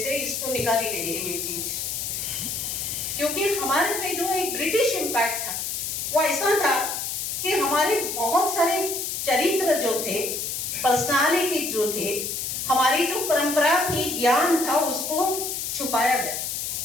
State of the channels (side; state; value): left; noise; hiss, 3 dB below the sound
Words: इसको निकाली गई है ये चीज, क्योंकि हमारे पे जो एक ब्रिटिश इम्पैक्ट था वो ऐसा था कि हमारे बहुत सारे चरित्र जो थे, पर्सनालिटी जो थे, हमारी जो परंपरा थी, ज्ञान था, उसको छुपाया गया।